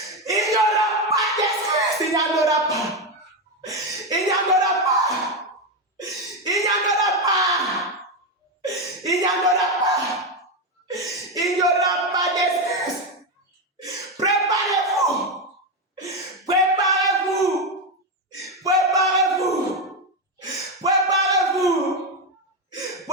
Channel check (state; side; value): normal; both; correlation 0.10